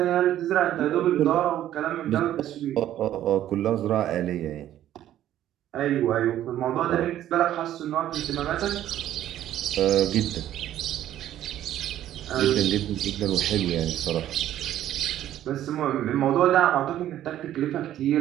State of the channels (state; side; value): quieter; left; 12.2 dB